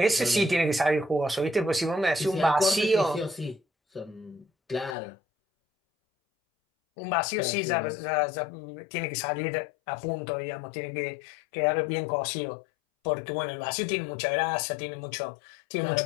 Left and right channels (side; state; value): right; drops out; at 5.0 s